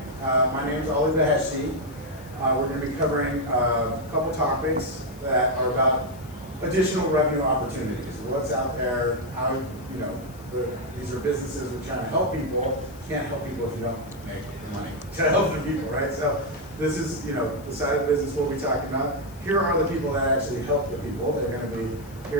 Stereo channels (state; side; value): noise; left; hiss, 24 dB below the sound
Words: My name is Ali Baheshi. We're going to be covering a couple topics that are about additional revenue opportunities. What's out there, how, these are businesses we're trying to help people. You can't help people if you don't make the money to help the people, right? So this is, the side of the business we'll be talking about. Here are the people that actually help the people. They're going to be